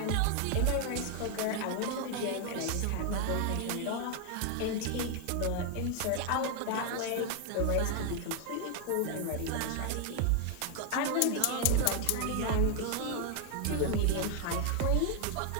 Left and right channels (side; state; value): both; different; correlation 0.01